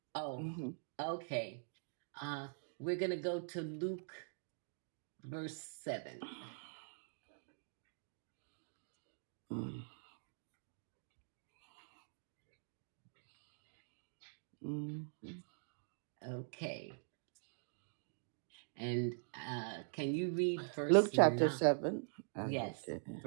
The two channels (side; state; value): left; silent; digital silence